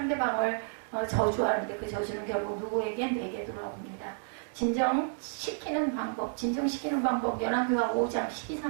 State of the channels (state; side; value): silent; left; digital silence